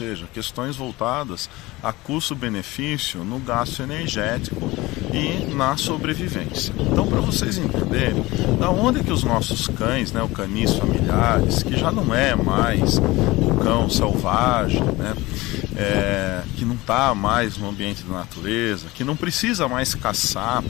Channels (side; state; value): right; quieter; 20.4 dB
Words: questões voltadas a custo-benefício no gasto energético e na sobrevivência. Então, para vocês entenderem, da onde que os nossos cães, né, o canis familiares, que já não é mais o cão selvagem, né, que não está mais no ambiente da natureza, que não precisa mais caçar